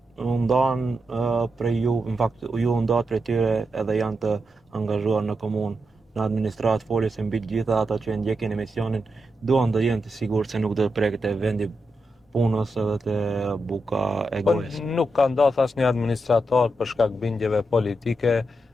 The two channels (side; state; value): both; normal; correlation 0.86